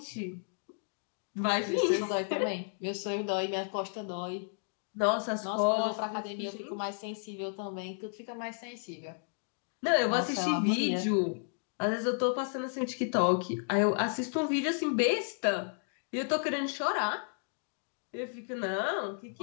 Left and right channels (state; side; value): silent; right; 56 dB below the other